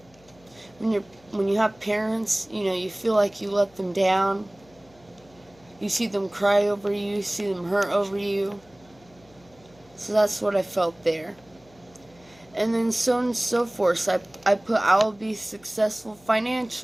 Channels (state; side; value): noise; left; hum, 28 dB below the sound